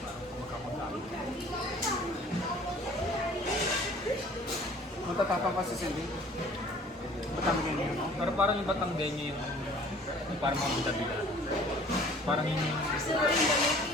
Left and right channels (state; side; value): normal; both; correlation 0.51